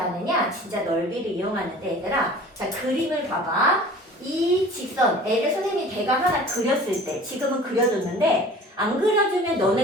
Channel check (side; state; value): both; normal; correlation 0.44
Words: 진짜 넓이를 이용하는데 얘들아 자 그림을 봐봐. 이 직선 L을 선생님이 대각 하나 그렸을 때 지금은 그려줬는데 안 그려주면